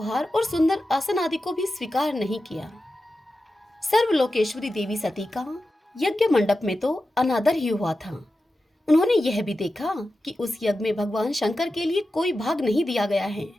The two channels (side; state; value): both; normal; correlation 0.92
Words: और सुंदर आसन आदि को भी स्वीकार नहीं किया। सर्वलोकेश्वरी देवी सती का यज्ञ मंडप में तो अनादर ही हुआ था। उन्होंने यह भी देखा कि उस यज्ञ में भगवान शंकर के लिए कोई भाग नहीं दिया गया है